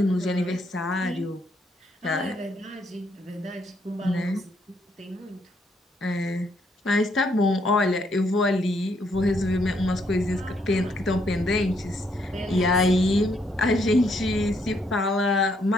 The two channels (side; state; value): both; normal; correlation 0.72